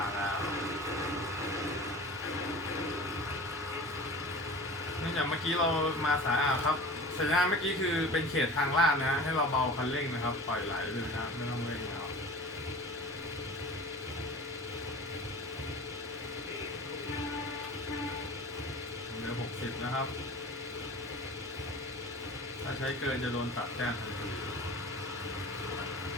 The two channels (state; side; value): normal; both; correlation 0.37